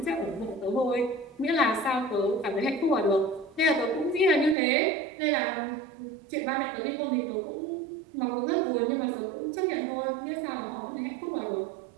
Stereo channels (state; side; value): drops out; left; at 4.5 s